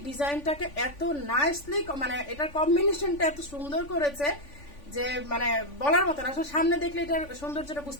ডিজাইনটাকে এত নাইসলি, মানে এটার কম্বিনেশনটা এত সুন্দর করেছে যে মানে বলার মতো না। আসলে সামনে দেখলে এটার সৌন্দর্যটা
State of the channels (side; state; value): right; late; 3.5 ms